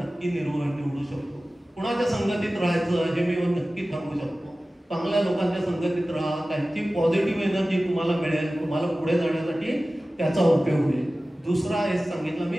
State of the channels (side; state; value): both; normal; correlation 0.96